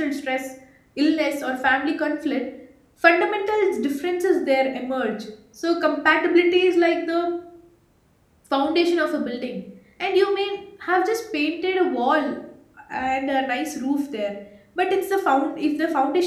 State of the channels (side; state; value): both; identical; correlation 1.00